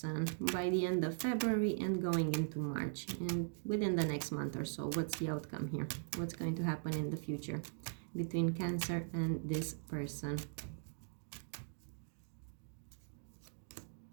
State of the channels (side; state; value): left; silent; digital silence